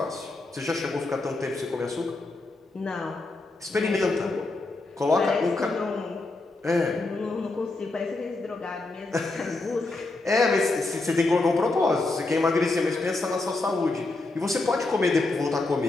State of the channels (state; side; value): quieter; right; 3.2 dB